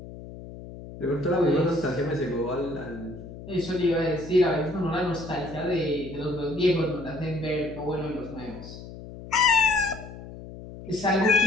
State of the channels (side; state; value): left; noise; hum, 14 dB below the sound